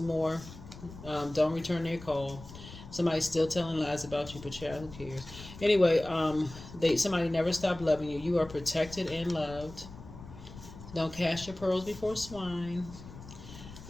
more. Don't return their call. Somebody's still telling lies about you, but child, who cares? Anyway, somebody never stopped loving you. You are protected and loved. Don't cast your pearls before swine.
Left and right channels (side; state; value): left; noise; rumble, 15 dB below the sound